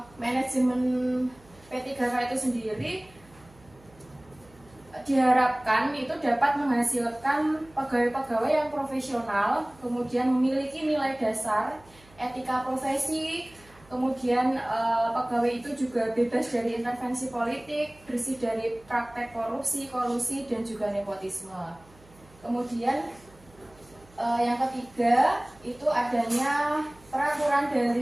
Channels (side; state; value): right; noise; hum, 26 dB below the sound